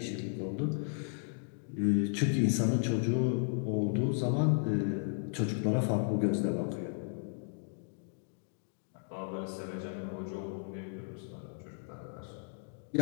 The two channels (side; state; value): right; silent; digital silence